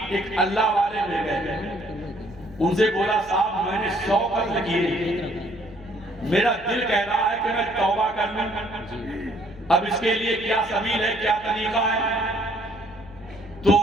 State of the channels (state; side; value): noise; right; hum, 23 dB below the sound